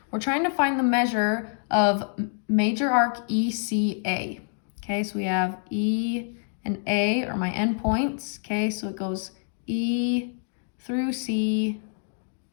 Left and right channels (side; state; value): right; silent; 61 dB below the other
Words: We're trying to find the measure of major arc ECA, okay? So we have E and A are my endpoints, okay? So it goes E through C,